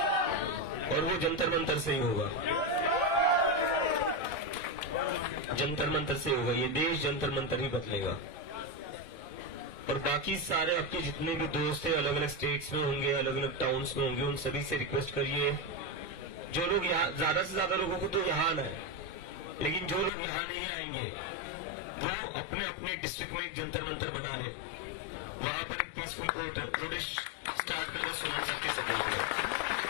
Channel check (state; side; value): drops out; right; at 20.1 s